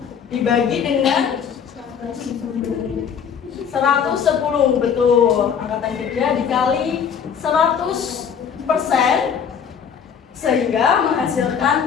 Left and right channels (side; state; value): right; quieter; 7.3 dB